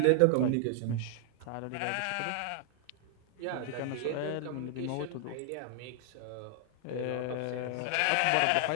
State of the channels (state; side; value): different; both; correlation 0.00